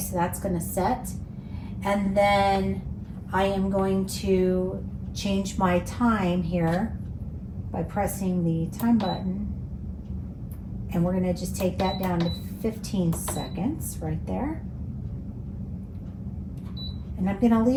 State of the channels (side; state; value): both; identical; correlation 1.00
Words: that's going to set. And then I am going to change my time here by pressing the time button. And we're going to just take that down to 15 seconds right there. And I'm going to